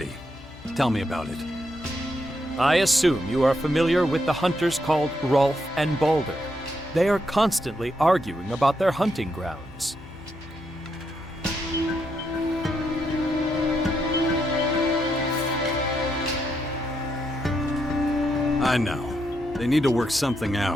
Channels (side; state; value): left; noise; hum, 20 dB below the sound